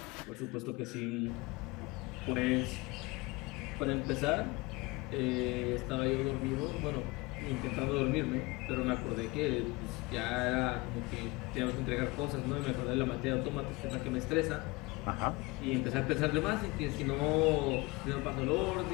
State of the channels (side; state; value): right; quieter; 24.0 dB